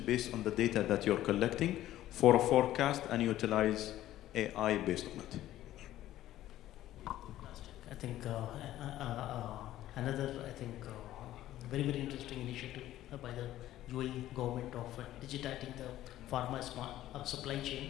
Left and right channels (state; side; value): quieter; right; 13.8 dB